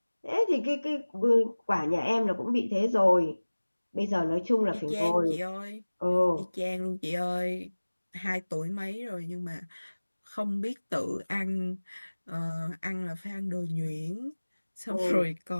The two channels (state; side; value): inverted; both; correlation -1.00